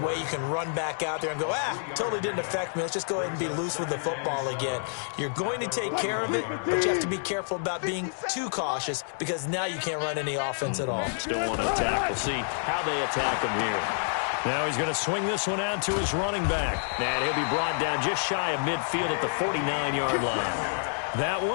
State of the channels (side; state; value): right; silent; digital silence